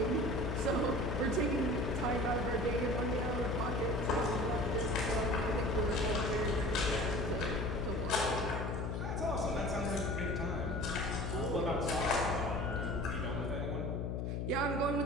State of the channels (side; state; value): left; noise; hum, 1 dB below the sound